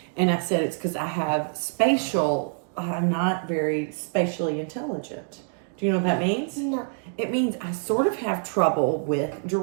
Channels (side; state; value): left; silent; digital silence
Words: And I said it's because I'm not very spatially intelligent. Do you know what that means? No. It means I sort of have trouble with